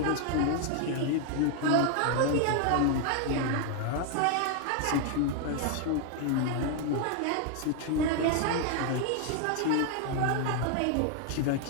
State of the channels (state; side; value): different; both; correlation 0.00